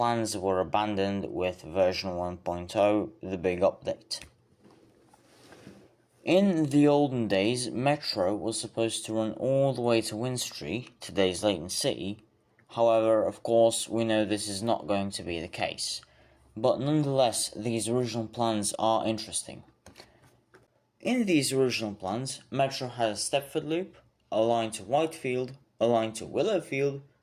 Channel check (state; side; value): identical; both; correlation 1.00